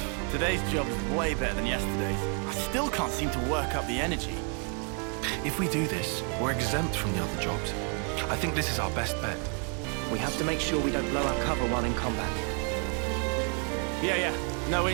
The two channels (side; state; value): left; quieter; 39.9 dB